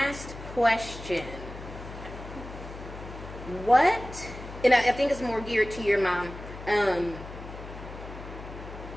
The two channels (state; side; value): noise; left; hum, 12 dB below the sound